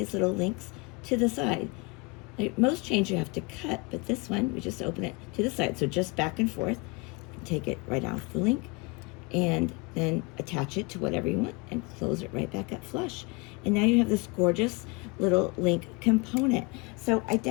little links to the side. Like most chains you have to cut, but this one, we just open it to the side. So just back and forth. You can take it right off the link and then attach it to whatever you want and close it right back up flush. And now you have this gorgeous little link component. So I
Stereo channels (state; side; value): quieter; right; 27.8 dB